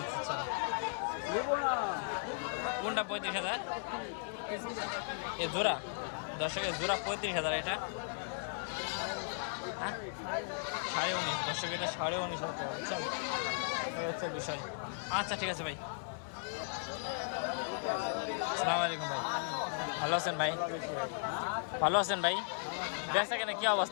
আচ্ছা। কোনটা 35,000? এ জোড়া? দর্শকের জোড়া 35,000। এটা হ্যাঁ 19.5। দর্শক এটা 19.5 টাকা, বুঝছেন? এই হচ্ছে বিষয়। আচ্ছা ঠিক আছে ভাই। আসসালামু আলাইকুম ভাই, ভালো আছেন ভাই? ভালো আছেন ভাই? বেচা কেনা কি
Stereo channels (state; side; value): silent; right; digital silence